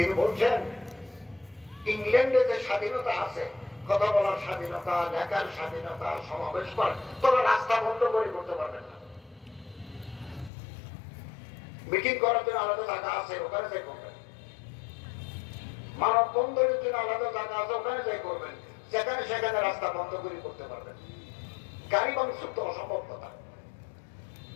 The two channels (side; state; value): right; drops out; at 10.5 s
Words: বলছেন ইংল্যান্ডে যে স্বাধীনতা আছে, কথা বলার স্বাধীনতা, লেখার স্বাধীনতা, সমাবেশ করার, তোরা রাস্তা বন্ধ করে করতে পারবেন না। মিটিং করার জন্য আলাদা জায়গা আছে, ওখানে যাই করবেন। মানব বন্ধনের জন্য আলাদা জায়গা আছে, ওখানে যাই করবেন। যেখানে সেখানে রাস্তা বন্ধ করে করতে পারবেন। গাড়ি মানুষের তো অসম্ভব কথা।